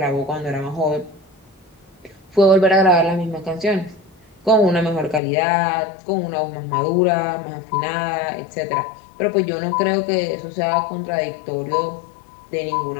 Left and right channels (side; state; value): right; drops out; at 5.2 s